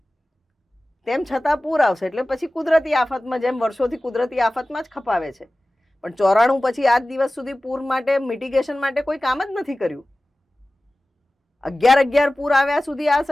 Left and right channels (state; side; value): normal; both; correlation 0.97